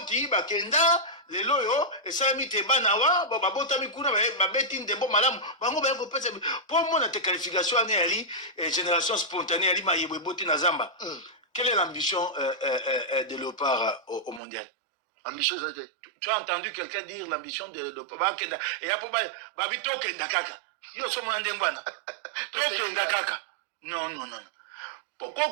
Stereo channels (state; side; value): drops out; left; at 14.4 s